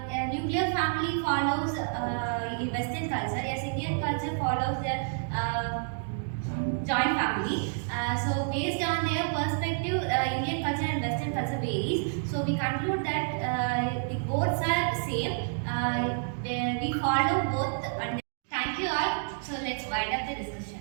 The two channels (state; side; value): silent; left; digital silence